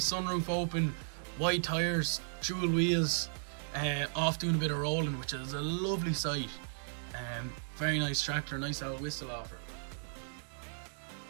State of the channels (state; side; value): silent; left; digital silence